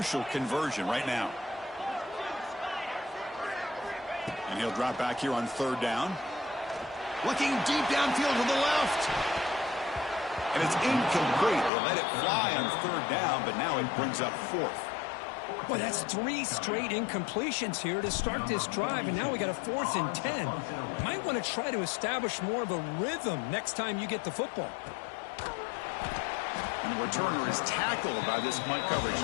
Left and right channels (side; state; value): right; drops out; at 11.7 s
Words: conversion right now. And he'll drop back here on 3rd down. Looking deep downfield to the left. And it's incomplete. They let it fly on third down, but now it brings up fourth. Well, that's 3 straight incompletions here to start this drive, and now we got a 4th and 10. Might want to try to establish more of a rhythm next time you get the football. And the returner is tackled by this punt coverage